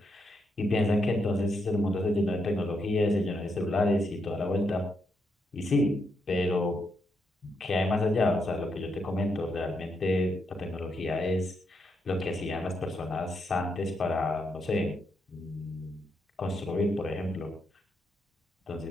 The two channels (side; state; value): both; normal; correlation 0.80